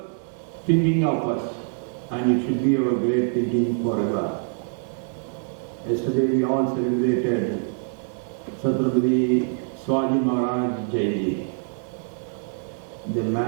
thinking of us, and it should be our great thinking forever. Yesterday we all celebrated Chhatrapati Shivaji Maharaj Jayanti. The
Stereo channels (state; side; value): silent; left; digital silence